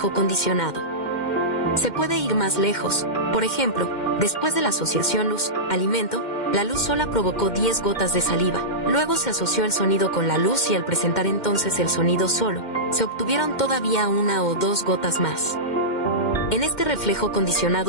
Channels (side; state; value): right; late; 2.1 ms